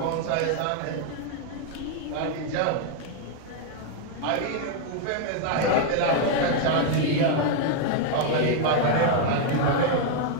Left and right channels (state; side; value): different; both; correlation 0.00